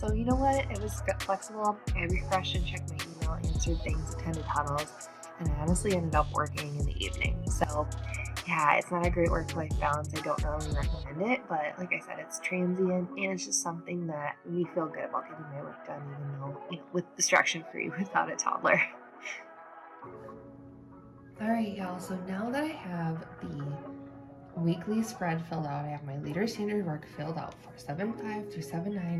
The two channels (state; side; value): identical; both; correlation 1.00